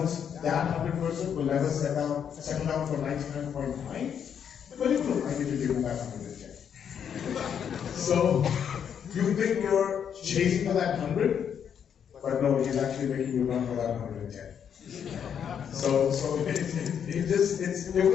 that 100%, will never settle down for 99.9, but he will like you to give him that 110. So, you think you're chasing for that 100, but no, he's actually making you run for that 110. So it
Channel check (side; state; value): right; quieter; 8.1 dB